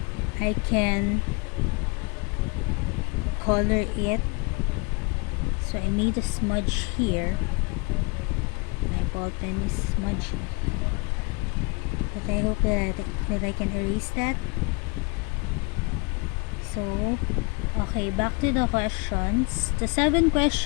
I can color it. So I made a smudge here. My ball pen is smudgy, but I hope that I can erase that. So okay, back to the questions. The 7th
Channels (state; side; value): quieter; right; 29.9 dB